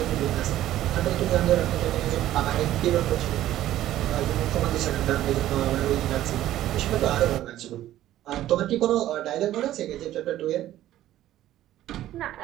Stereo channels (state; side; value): quieter; left; 13.5 dB